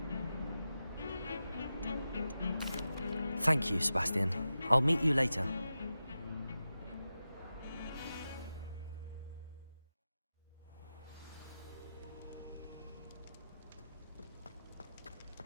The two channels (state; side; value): inverted; both; correlation -0.92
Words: Thank you, Sebastian. I'll meet you later.